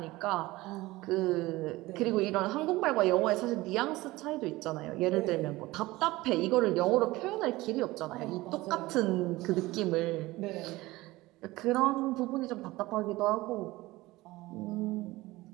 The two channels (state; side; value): quieter; left; 19.4 dB